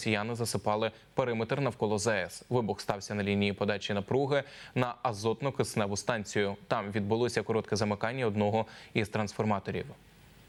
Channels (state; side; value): identical; both; correlation 1.00